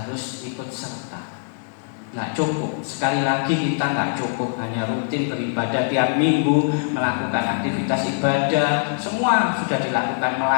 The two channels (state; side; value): silent; right; digital silence